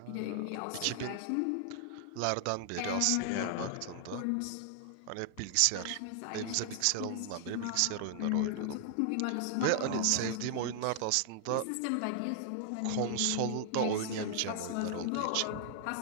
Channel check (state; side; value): different; both; correlation 0.00